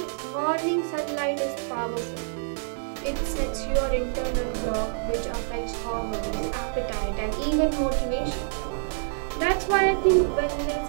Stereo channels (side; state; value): left; silent; digital silence